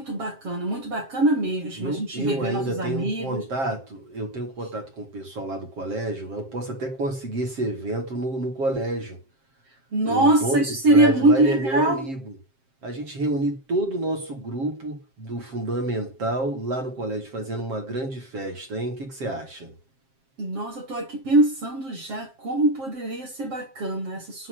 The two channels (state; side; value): late; left; 7.5 ms